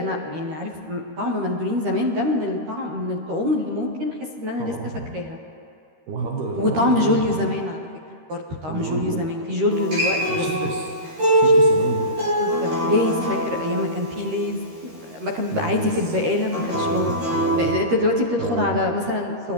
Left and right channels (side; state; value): left; late; 13 ms